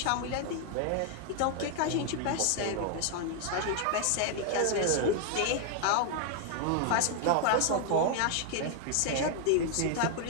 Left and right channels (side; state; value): both; different; correlation 0.00